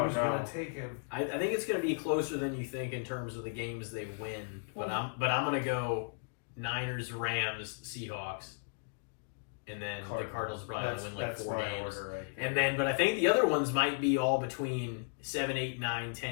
Who's no. gonna take him? I think it's gonna be closer than you think in terms of the games they win. But I'm gonna go Niners, Rams, Seahawks, and then the Cardinals probably That's, win like that's 4 my games. order right there. And then, but I think the other ones might be all between 7, 8, 9,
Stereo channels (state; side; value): silent; right; digital silence